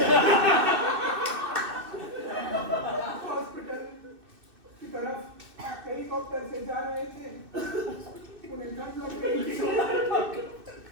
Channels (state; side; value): late; left; 2.6 ms